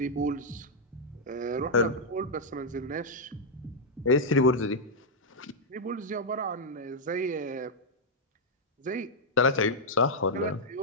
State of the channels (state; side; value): normal; both; correlation -0.04